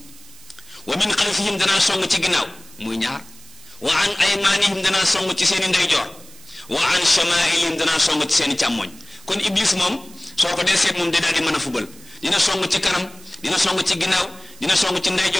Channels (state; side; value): noise; right; hiss, 21 dB below the sound